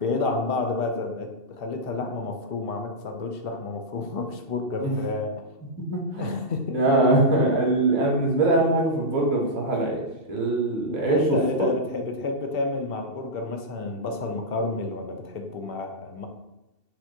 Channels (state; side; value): late; left; 2.7 ms